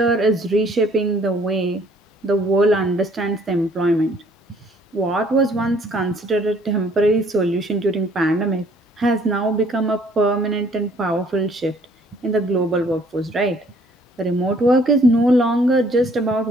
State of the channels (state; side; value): normal; both; correlation 0.60